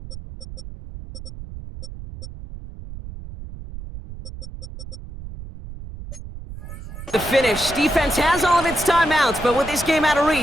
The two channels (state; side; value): noise; right; rumble, 12 dB below the sound